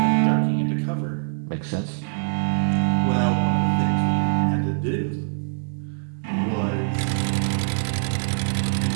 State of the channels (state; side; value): silent; left; digital silence